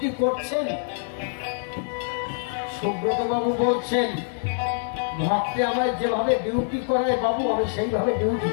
করছেন? সুব্রত বাবু বলছেন, ভক্তে আমায় যেভাবে ডিউটি করায় বাবু আমি সেইভাবে ডিউটি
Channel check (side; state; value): right; silent; digital silence